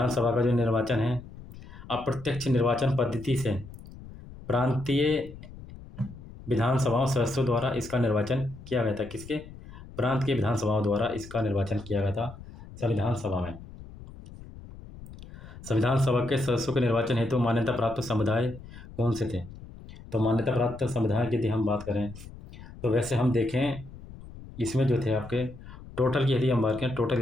सभा का जो निर्वाचन है अप्रत्यक्ष निर्वाचन पद्धति से प्रांतीय विधानसभाओं सदस्यों द्वारा इसका निर्वाचन किया गया था। किसके? प्रांत के विधानसभाओं द्वारा इसका निर्वाचन किया गया था संविधान सभा में। संविधान सभा के सदस्यों के निर्वाचन हेतु मान्यता प्राप्त समुदाय कौन से थे? तो मान्यता प्राप्त समुदाय की यदि हम बात करें तो वैसे हम देखें इसमें जो थे आपके टोटल की यदि हम बात करें,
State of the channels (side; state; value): left; noise; rumble, 16 dB below the sound